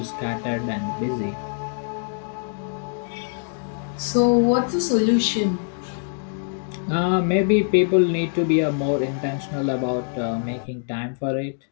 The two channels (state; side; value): silent; right; digital silence